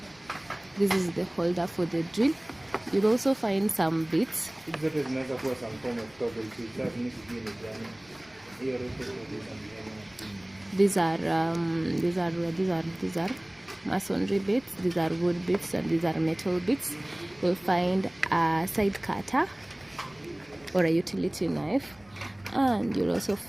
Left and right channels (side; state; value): left; noise; rumble, 29 dB below the sound